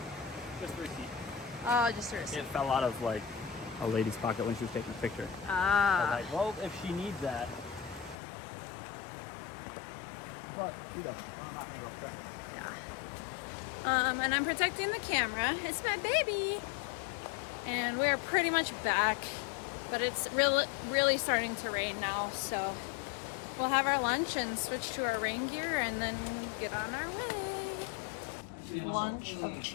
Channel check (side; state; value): right; drops out; at 8.2 s